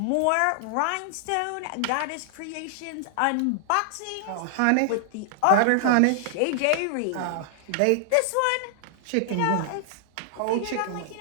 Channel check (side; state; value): both; different; correlation -0.01